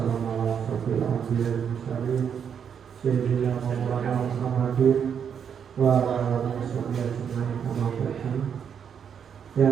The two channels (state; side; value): quieter; left; 7.7 dB